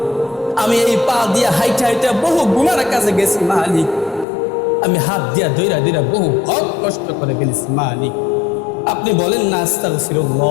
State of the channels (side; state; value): right; drops out; at 4.2 s